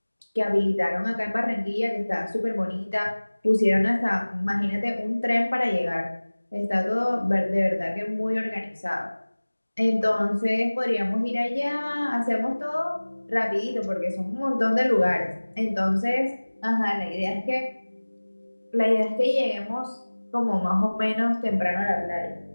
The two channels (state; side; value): inverted; both; correlation -1.00